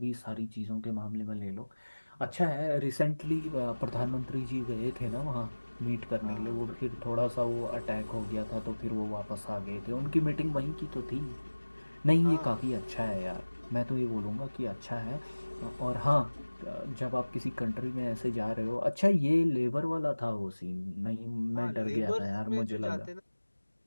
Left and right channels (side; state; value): both; inverted; correlation -1.00